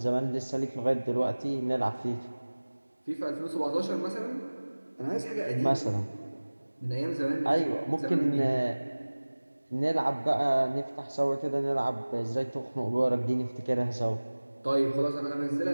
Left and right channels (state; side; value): inverted; both; correlation -1.00